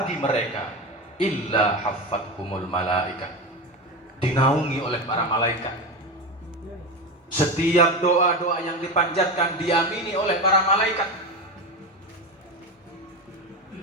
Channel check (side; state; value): both; normal; correlation 0.20